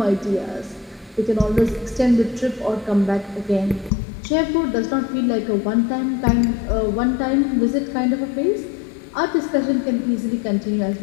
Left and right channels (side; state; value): right; drops out; at 3.9 s